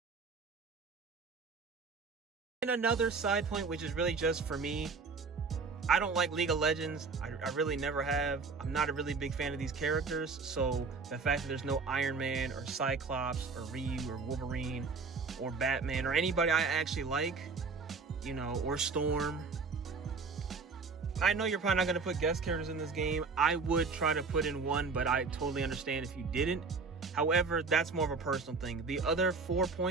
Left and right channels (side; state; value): left; quieter; 4.5 dB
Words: And And another side point, which is really just for me, I don't like League of Legends. I really never have. I'm not a really big fan of these characters. So the fact that there's no Iron Man or Cyclops or Ryu or Wolverine or Batman or anybody I actually like, you know, or Storm. I know you're probably not going to put guest characters in this game. I would try to put in one, but I totally understand if you didn't. However, that's more of a personal thing. The other 4